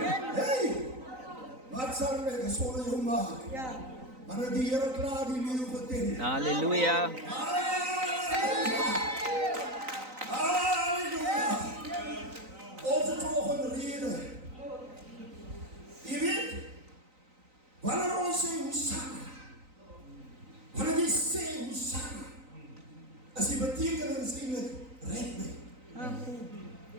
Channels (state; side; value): late; left; 3.9 ms